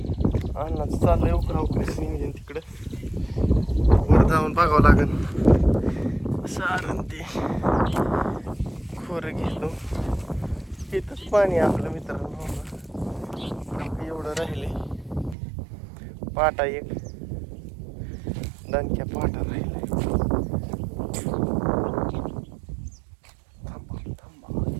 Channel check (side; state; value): left; drops out; at 15.4 s